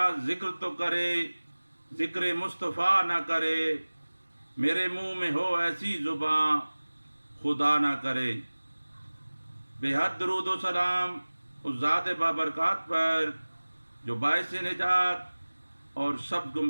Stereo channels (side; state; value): both; inverted; correlation -1.00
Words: ज़िक्र तो करे, ज़िक्र मुस्तफ़ा ना करे, मेरे मुँह में हो ऐसी ज़ुबां खुदा ना करे। बेहद दरूद व सलाम उस ज़ात बाबरकात पर जो बाइस निजात और सब